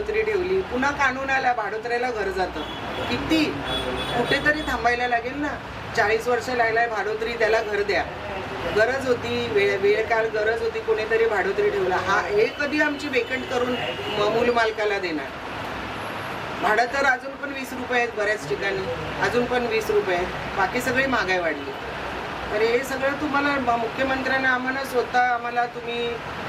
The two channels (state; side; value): identical; both; correlation 1.00